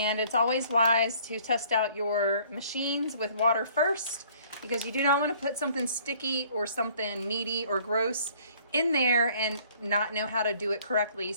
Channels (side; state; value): both; inverted; correlation -0.57